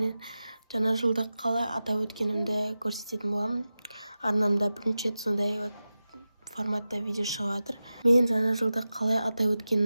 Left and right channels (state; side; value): inverted; both; correlation -0.94